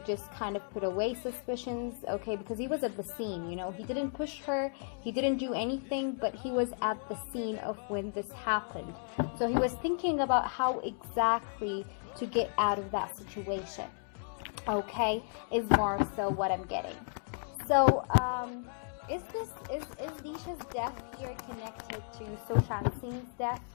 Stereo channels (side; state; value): right; silent; 55 dB below the other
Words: just kind of put away suspicions, okay, because he was at the scene, you know, he didn't push her, he didn't do anything, but he was at the scene of when this happened. So he was thinking about how exactly to get out of that situation, okay, is more so what I'm getting. So, is Disha's death here connected to Sushant Singh's death?